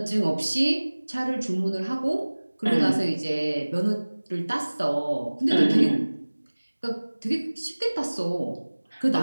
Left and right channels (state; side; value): inverted; both; correlation -1.00